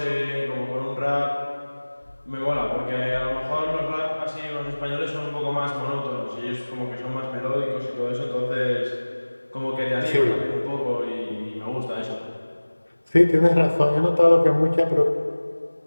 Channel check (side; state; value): both; inverted; correlation -1.00